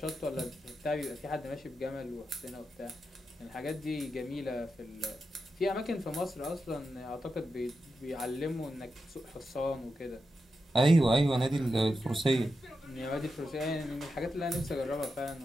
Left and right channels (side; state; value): both; normal; correlation 0.88